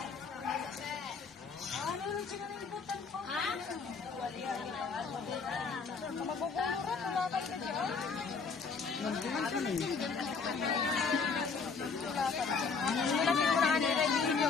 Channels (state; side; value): quieter; right; 5.1 dB